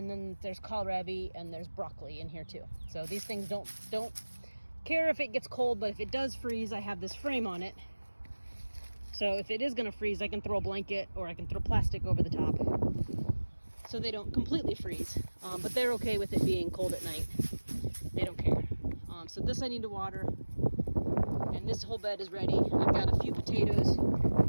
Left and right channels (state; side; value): inverted; both; correlation -1.00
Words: then there's kohlrabi and there's broccoli in here too. So these things don't care if it gets cold, but if it does freeze, I have this frame on it. So if it is gonna freeze, I can throw a blanket or I can throw plastic over the top so they don't completely freeze. But they're okay with it being cold at night. They don't care. So this I need to water, and this whole bed is ready. I've got a few potatoes.